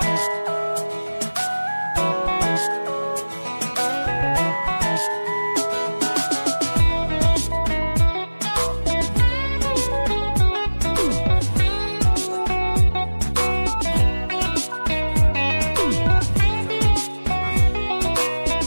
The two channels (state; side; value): inverted; both; correlation -1.00